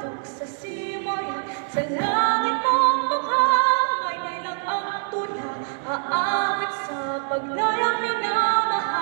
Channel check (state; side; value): silent; left; 60 dB below the other